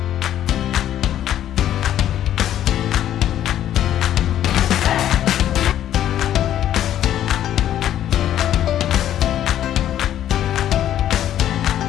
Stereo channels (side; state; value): right; quieter; 11.4 dB